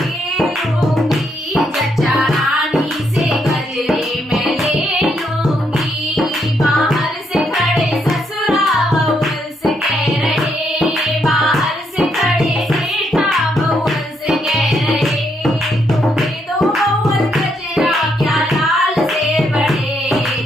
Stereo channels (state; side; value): normal; both; correlation 0.76